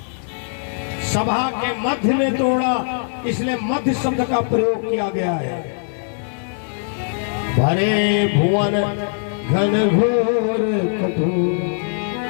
सभा के मध्य में तोड़ा, इसलिए मध्य शब्द का प्रयोग किया गया है। भरे भुवन घन घोर कठोर।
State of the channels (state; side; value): silent; right; digital silence